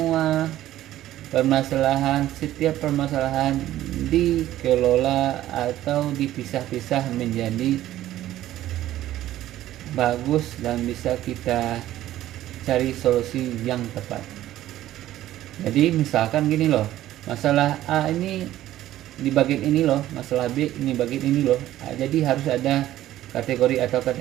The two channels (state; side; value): quieter; left; 13.8 dB